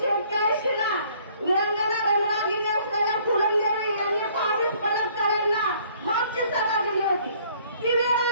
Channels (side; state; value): both; inverted; correlation -0.60